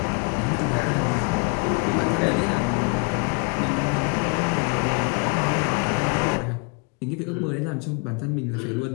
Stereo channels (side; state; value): right; quieter; 34.3 dB